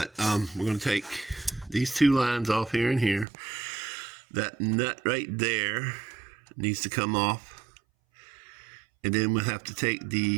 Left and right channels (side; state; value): left; drops out; at 3.2 s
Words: we're going to take these two lines off here and here. That nut right there needs to come off. And then we'll have to take